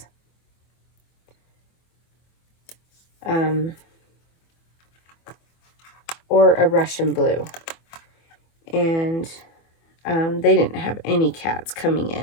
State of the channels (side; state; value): right; late; 24 ms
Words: Or a Russian blue. And they didn't have any cats coming